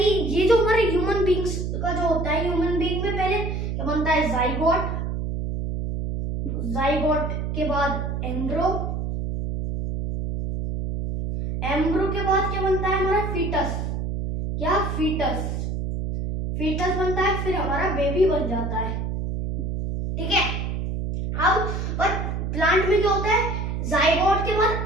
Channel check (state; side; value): noise; right; hum, 2 dB below the sound